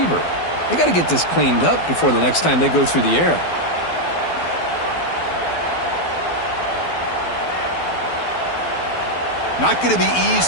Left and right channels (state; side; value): late; right; 12 ms